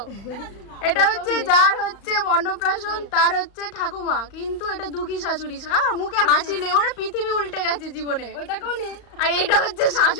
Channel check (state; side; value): late; right; 35 ms